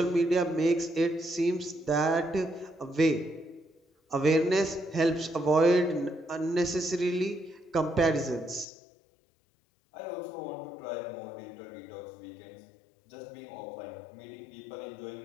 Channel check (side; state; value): right; drops out; at 8.7 s